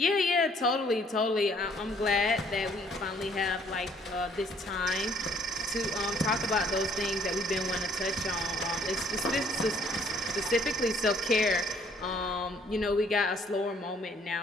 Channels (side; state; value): both; normal; correlation 0.61